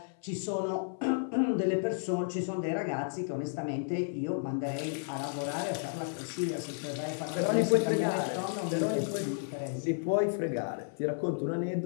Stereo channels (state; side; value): silent; right; 56 dB below the other